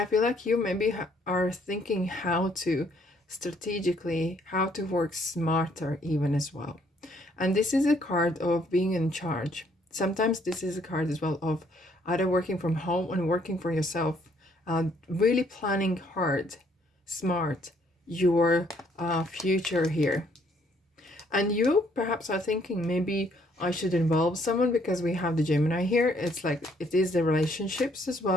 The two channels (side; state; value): both; normal; correlation 0.66